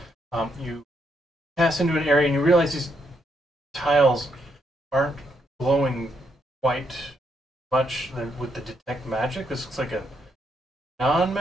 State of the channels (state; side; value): normal; both; correlation 0.77